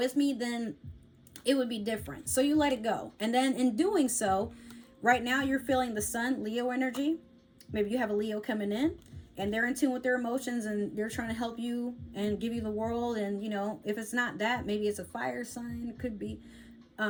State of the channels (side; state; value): both; identical; correlation 1.00